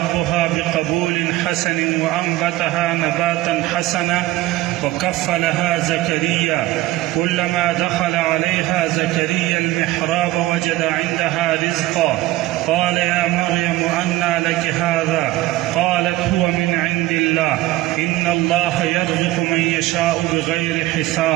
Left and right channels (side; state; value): left; quieter; 16.7 dB